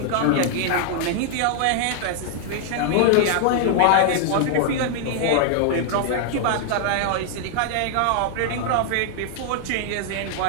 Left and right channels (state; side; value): different; both; correlation 0.00